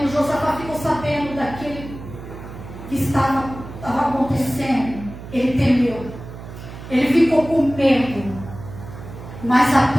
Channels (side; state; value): right; noise; hum, 13 dB below the sound